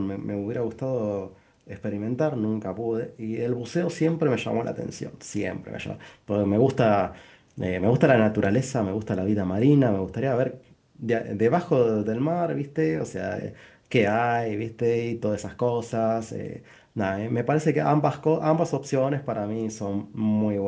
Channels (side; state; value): both; identical; correlation 1.00